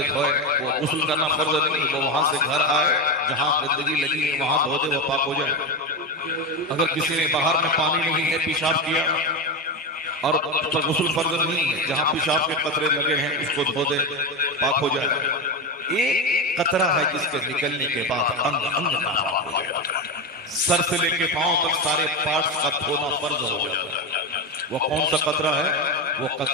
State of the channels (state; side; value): normal; both; correlation 0.15